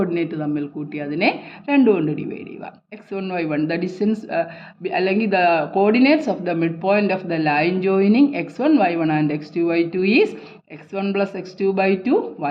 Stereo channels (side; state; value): both; identical; correlation 1.00